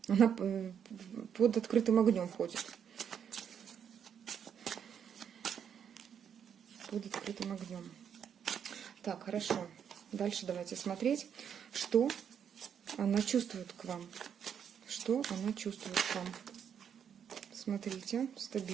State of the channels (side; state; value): left; quieter; 8.1 dB